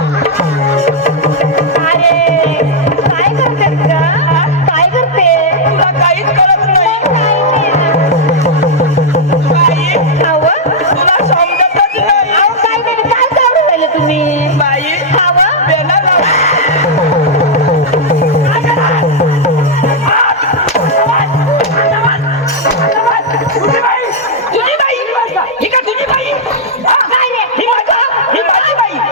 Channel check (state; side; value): normal; both; correlation -0.04